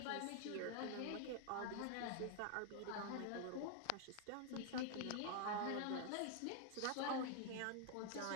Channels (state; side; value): different; both; correlation 0.00